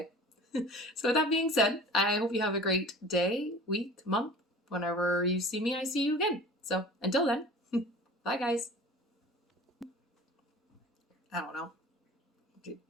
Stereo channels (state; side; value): normal; both; correlation 0.41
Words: So with that being said, I hope you have a great day, week, month. Whenever you see me, I see you again. So until then, bye guys. I don't know.